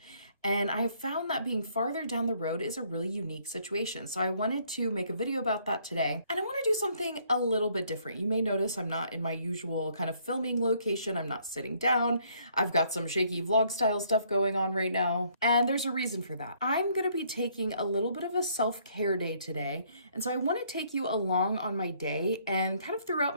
And I have found that being farther down the road is a really unique situation. So I wanted to make a video about that today. And I want to do something a little bit different. You may notice I'm not in my usual kind of filming location. I'm not sitting down. I've got some shaky vlog style stuff going on right now. And there's a reason for that. I'm going to be taking a little bit of a self-care day today. And so I want to take you along on my day and kind of throughout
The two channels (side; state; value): both; inverted; correlation -0.66